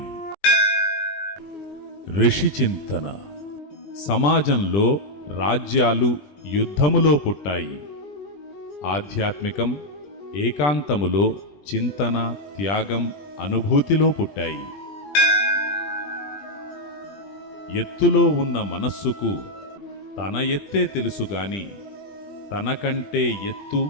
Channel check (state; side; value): late; right; 20 ms